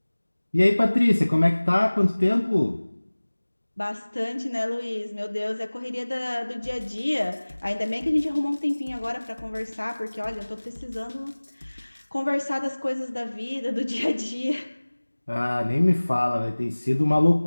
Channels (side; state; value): both; inverted; correlation -1.00